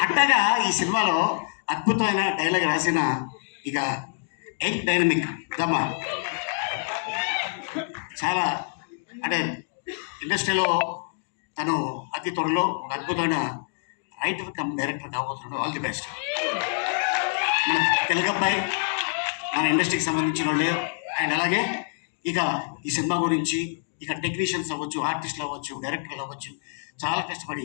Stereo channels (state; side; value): silent; right; digital silence